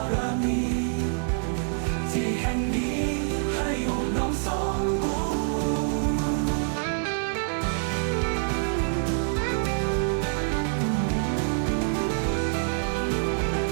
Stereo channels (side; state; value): left; silent; digital silence